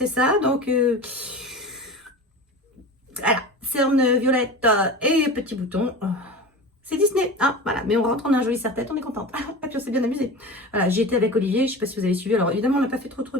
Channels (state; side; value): normal; both; correlation 0.32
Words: ça, donc... Voilà, cernes violettes et petits boutons. C'est Disney, hein, voilà. Mais on rentre, on a un joli serre-tête, on est contente. Et puis on s'est bien amusé. Voilà, j'y étais avec Olivier, je sais pas si vous avez suivi. Alors évidemment, on n'a pas fait trop